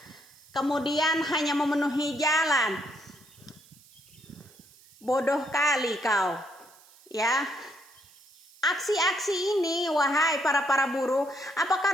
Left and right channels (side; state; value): right; noise; hiss, 26 dB below the sound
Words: kemudian hanya memenuhi jalan? Bodoh kali kau ya. Aksi-aksi ini, wahai para buruh,